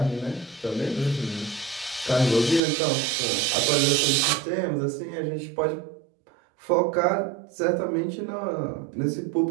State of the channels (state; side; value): drops out; left; at 2.6 s